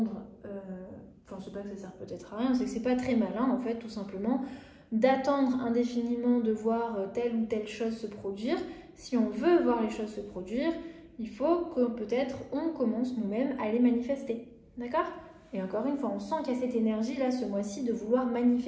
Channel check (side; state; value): both; identical; correlation 1.00